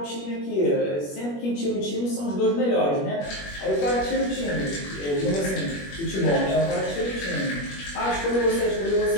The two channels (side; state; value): right; late; 21 ms